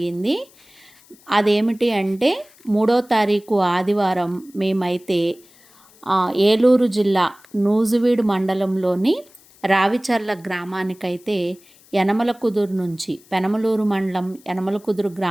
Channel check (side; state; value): left; noise; hiss, 28 dB below the sound